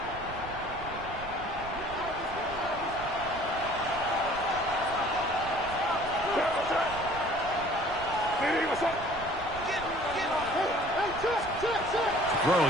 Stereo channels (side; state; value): right; noise; rumble, 13 dB below the sound